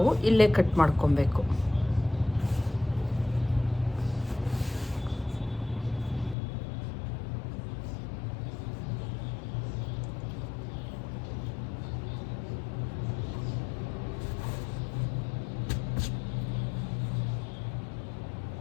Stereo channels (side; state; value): right; drops out; at 6.4 s